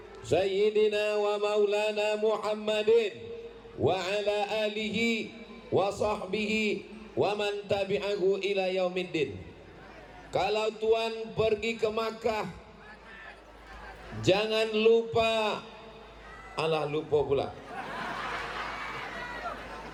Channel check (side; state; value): both; identical; correlation 1.00